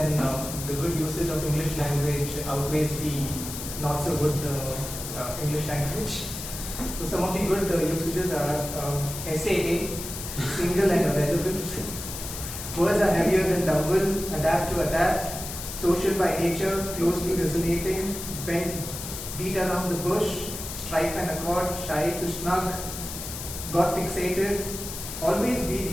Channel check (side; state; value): left; noise; hiss, 8 dB below the sound